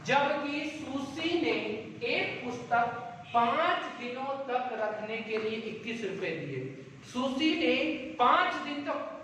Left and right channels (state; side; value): identical; both; correlation 1.00